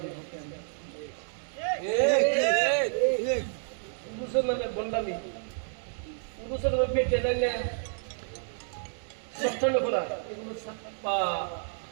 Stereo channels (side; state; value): left; silent; digital silence